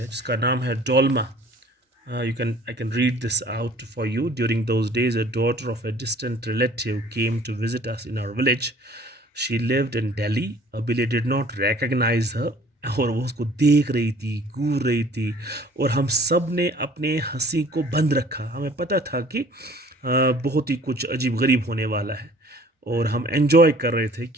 जिसका नाम है Dolma. I can read this out for you. During those days, a daughter of a distant relative came to visit us in our village. She lived in Delhi. Abile did not recognize her. और वो उसको देख रही थी, घूर रही थी, और हम सब ने अपने हंसी को बंद रखा. हमें पता था कि बहुत ही कुछ अजीब गरीब होने वाला है, और हम एंजॉय कर रहे थे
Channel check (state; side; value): normal; both; correlation 0.52